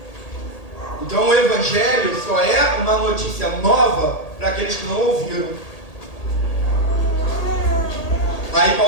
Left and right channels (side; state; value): right; late; 1.8 ms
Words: Então o Evangelho só é uma notícia nova para aqueles que não ouviram. Aí